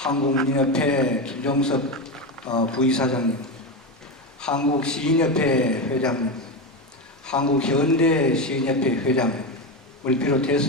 김종석 부이사장님, 한국시인협회 회장님, 한국현대시인협회 회장을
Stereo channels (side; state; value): both; normal; correlation 0.15